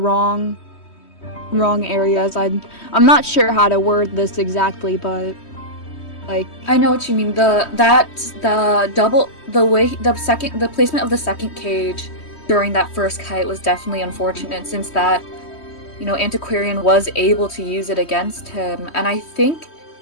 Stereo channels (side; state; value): right; late; 3.1 ms